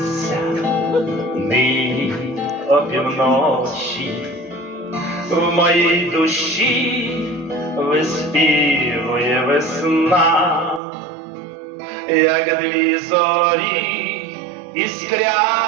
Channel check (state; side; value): drops out; left; at 10.8 s